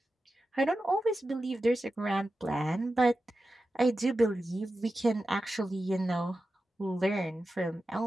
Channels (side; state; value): both; normal; correlation 0.92